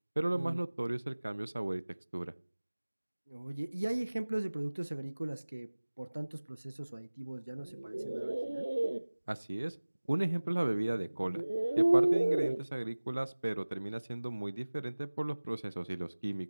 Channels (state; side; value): inverted; both; correlation -1.00